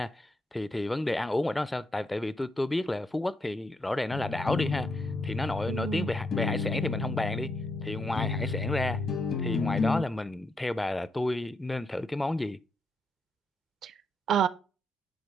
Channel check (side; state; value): both; normal; correlation 0.79